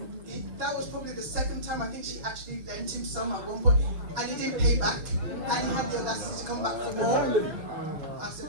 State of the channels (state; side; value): late; left; 6.4 ms